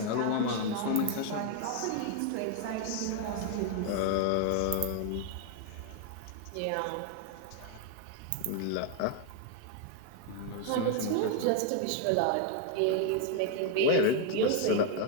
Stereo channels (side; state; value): both; different; correlation 0.00